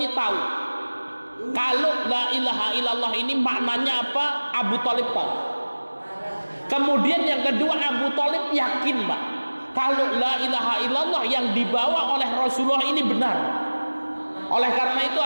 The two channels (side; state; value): both; inverted; correlation -1.00